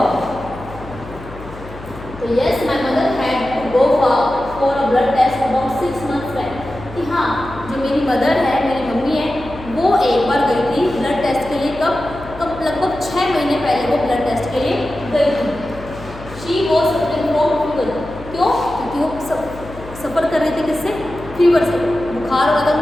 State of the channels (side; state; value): left; noise; hum, 15 dB below the sound